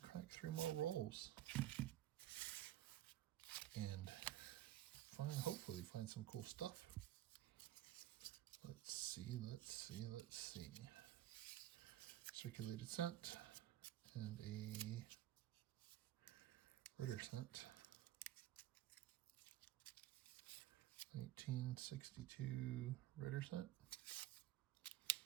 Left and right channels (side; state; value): left; quieter; 13.8 dB